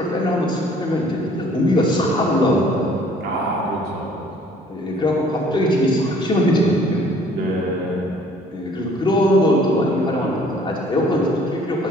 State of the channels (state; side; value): normal; both; correlation 0.56